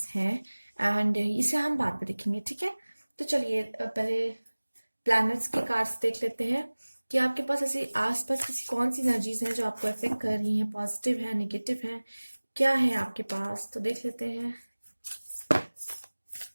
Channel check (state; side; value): inverted; both; correlation -1.00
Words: हैं। एंड इसे हम बाद में देखेंगे, ठीक है। तो चलिए पहले प्लैनेट्स के कार्ड्स देख लेते हैं कि आपके पास ऐसी आसपास किसी कौन सी एनर्जीज हैं जो आपको अफेक्ट कर रही हैं, पॉजिटिव है, नेगेटिव है, क्या है आपके पास। तो देख लेते हैं।